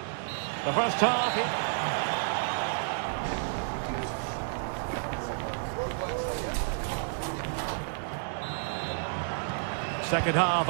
The first half. Second half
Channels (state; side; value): silent; left; digital silence